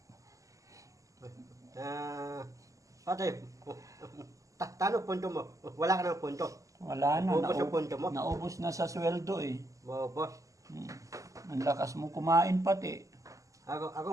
Ate, tanong punto mo. Wala ka ng punto. Wala na. Ubus ang punto mo. Naubos na sa sweldo eh. Boss. Ang lakas mo kumain pati.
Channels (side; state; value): left; late; 0.16 ms